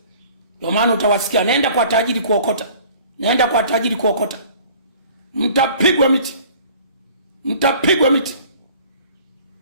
Ndio maana utawasikia naenda kwa tajiri kuokota. Naenda kwa tajiri kuokota. Mtapigwa miti. Mtapigwa miti.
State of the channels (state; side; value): inverted; both; correlation -0.50